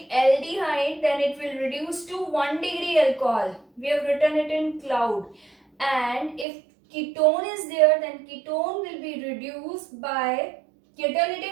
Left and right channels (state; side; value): drops out; left; at 6.5 s